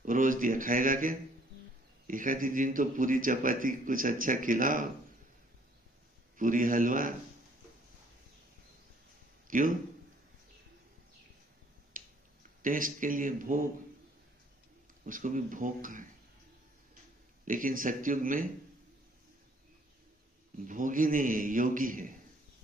रोज दिया, खाएगा क्या? एक आधी दिन तो पूरी चपाती कुछ अच्छा खिलाओ, पूरी हलवा। क्यों? टेस्ट के लिए भोग, उसको भी भोग का है। लेकिन सतयुग में भोगी नहीं है, योगी है।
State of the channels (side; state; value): both; normal; correlation 0.61